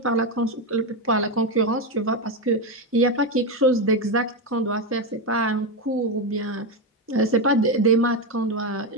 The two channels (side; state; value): both; normal; correlation 0.11